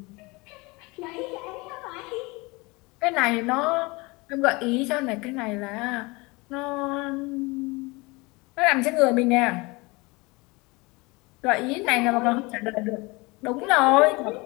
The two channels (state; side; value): quieter; right; 25.0 dB